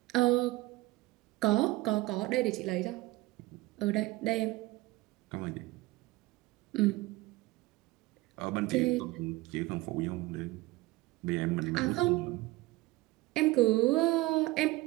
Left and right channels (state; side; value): quieter; left; 19.9 dB